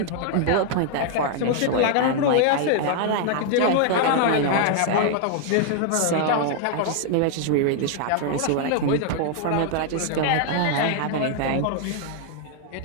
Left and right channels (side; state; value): both; different; correlation 0.00